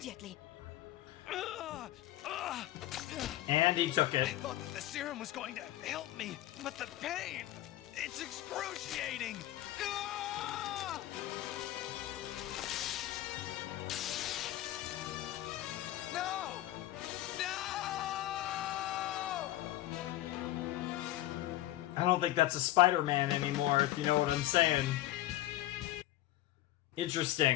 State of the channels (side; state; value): right; quieter; 15.1 dB